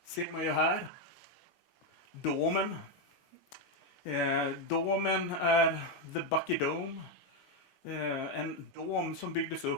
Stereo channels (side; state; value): both; normal; correlation 0.05